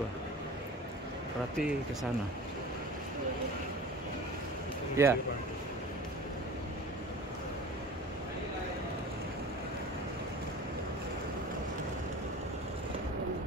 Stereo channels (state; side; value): normal; both; correlation 0.38